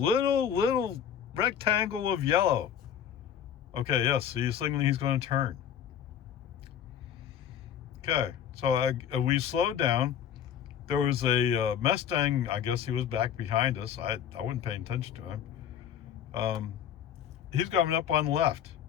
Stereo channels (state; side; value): quieter; right; 9.1 dB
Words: rectangle of yellow. Okay, yes, he's signaling he's going to turn. Okay, so we slowed down. There was a Mustang. I guess he was back behind us. I wasn't paying attention to him. He's coming up on the left.